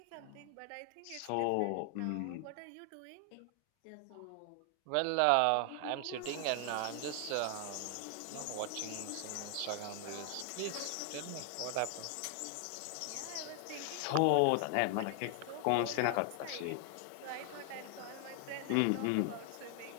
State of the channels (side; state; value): both; different; correlation 0.00